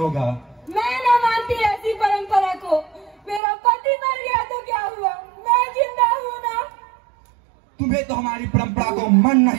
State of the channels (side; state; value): left; drops out; at 3.4 s